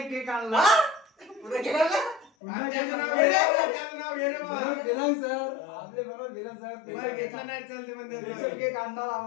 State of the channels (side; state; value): right; drops out; at 2.3 s